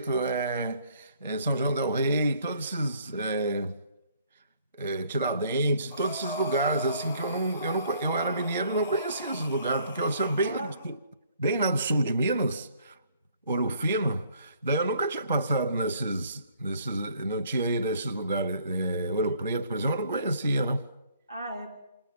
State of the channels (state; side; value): inverted; both; correlation -0.62